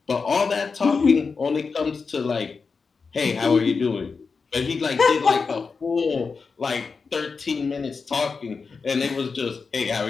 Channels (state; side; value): quieter; right; 4.9 dB